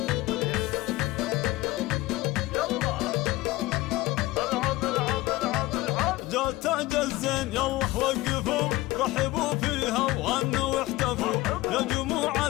جات تاج الزين يلا وقفوا، رحبوا فيها وغنوا واحتفوا. يا جموع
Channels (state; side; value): quieter; right; 18.9 dB